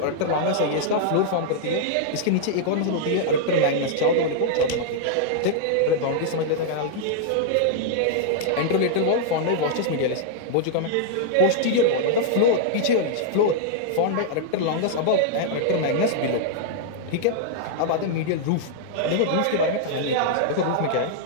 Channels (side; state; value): both; different; correlation -0.01